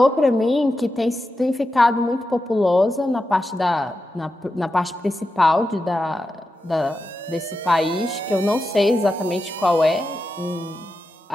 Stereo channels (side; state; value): both; normal; correlation 0.90